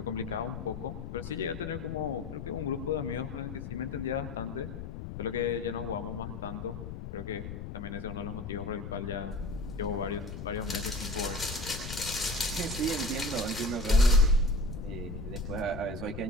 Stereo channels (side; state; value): left; noise; rumble, 8 dB below the sound